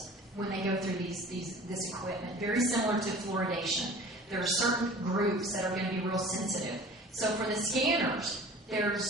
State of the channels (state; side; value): normal; both; correlation 0.44